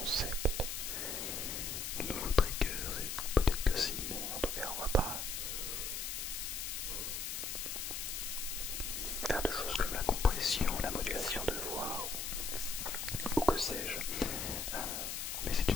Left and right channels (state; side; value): noise; left; hiss, 3 dB below the sound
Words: de nouveaux triggers, et peut-être que si, mais en tout cas on va pas faire de choses comme la compression, la modulation de voix ou que sais-je. Mais c'est